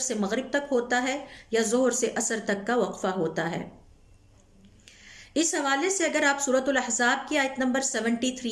مغرب تک ہوتا ہے یا ظہر سے عصر تک کا وقفہ ہوتا ہے۔ اس حوالے سے اگر آپ سورۃ الاحزاب کی آیت نمبر 73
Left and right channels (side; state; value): both; identical; correlation 1.00